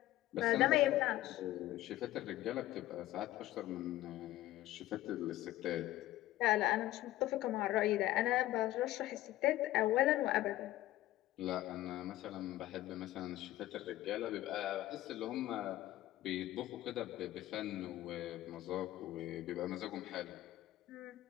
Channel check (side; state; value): right; quieter; 15.3 dB